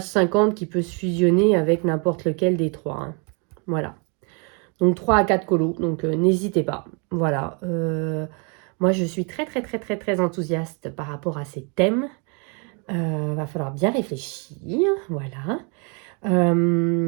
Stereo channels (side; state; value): left; quieter; 35.1 dB